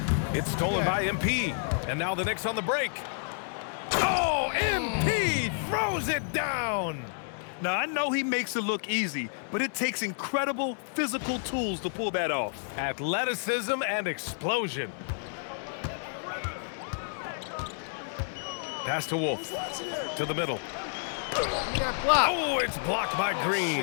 It's stolen by MP, and now the Knicks on the break. Oh, MP throws it down. Now, I know he makes it look easy, but it takes incredible physical tools to pull that off. Athleticism and explosion. Pass to Wolf, to the middle. Oh, it's blocked by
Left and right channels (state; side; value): silent; right; 58 dB below the other